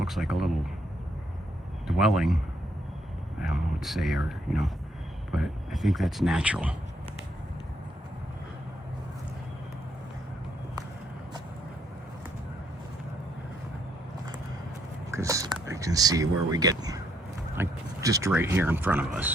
like a little dwelling. I don't know what to say, or, you know, but I think that's natural. Because I can see where we get, like, just right here in front of us.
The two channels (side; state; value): both; normal; correlation 0.72